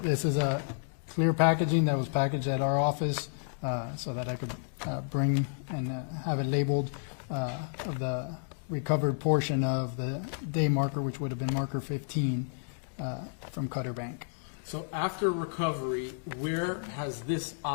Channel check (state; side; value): silent; right; digital silence